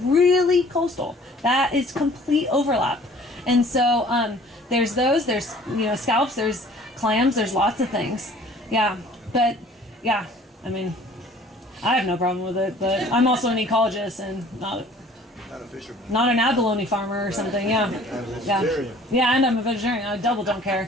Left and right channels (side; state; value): both; normal; correlation 0.52